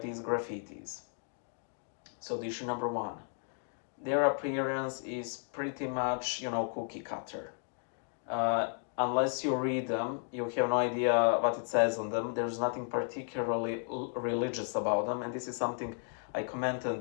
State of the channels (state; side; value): silent; right; 55 dB below the other